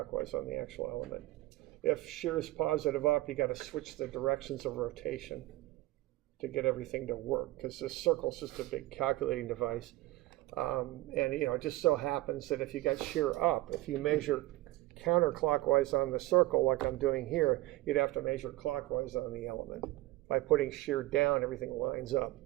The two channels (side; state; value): left; quieter; 18.3 dB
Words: on the actual element. If shear is positive up, you got to switch the directions of rotation to get everything to work, because this circle is just a big calculating device. And it just so happens that if you got shear up, if you measure counterclockwise on the circle like I'm doing here, you'd have to measure clockwise on the element. By putting shear down, everything lines up.